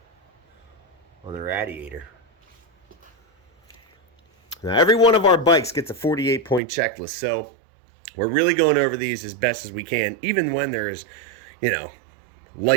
on the radiator. Now, every one of our bikes gets a 48-point checklist, so we're really going over these as best as we can, even when there is, you know,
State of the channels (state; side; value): drops out; left; at 6.6 s